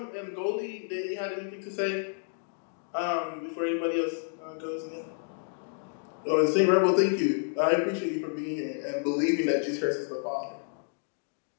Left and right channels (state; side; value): silent; right; 58 dB below the other